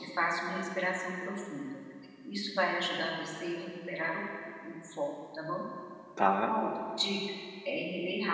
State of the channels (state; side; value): identical; both; correlation 1.00